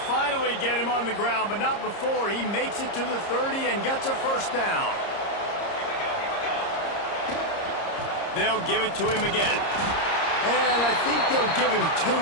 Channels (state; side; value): late; right; 30 ms